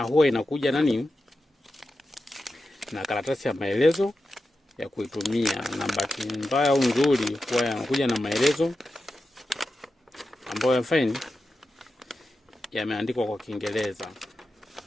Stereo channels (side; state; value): both; normal; correlation 0.91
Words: huwa inakuja nani na karatasi ya maelezo ya kuitumia, na bahati mbaya au nzuri huwa yanakuja na maelezo ambayo yameandikwa kwa Kiingereza.